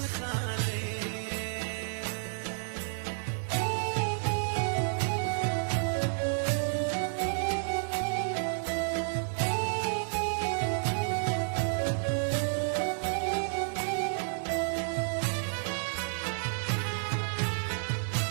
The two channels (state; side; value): silent; left; 57 dB below the other